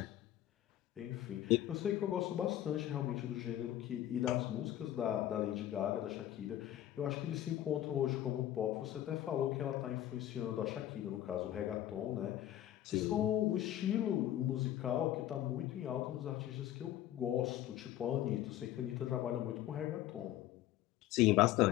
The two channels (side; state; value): right; quieter; 12.9 dB